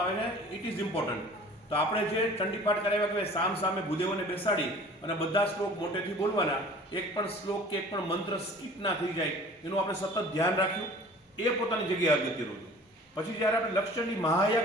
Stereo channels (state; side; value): normal; both; correlation 0.46